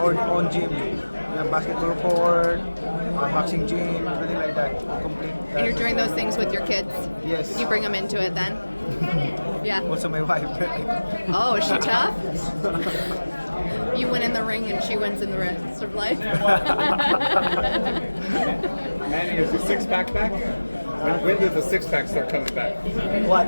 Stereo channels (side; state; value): both; inverted; correlation -1.00